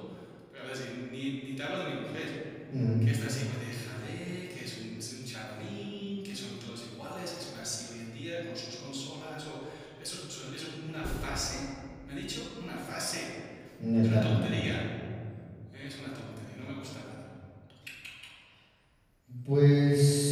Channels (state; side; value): identical; both; correlation 1.00